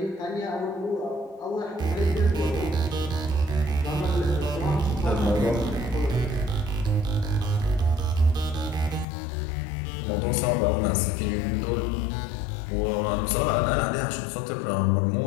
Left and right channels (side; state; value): right; drops out; at 9.1 s